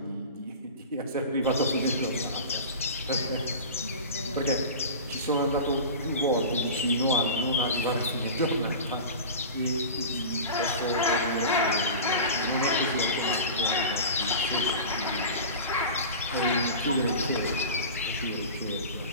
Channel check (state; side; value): inverted; both; correlation -0.33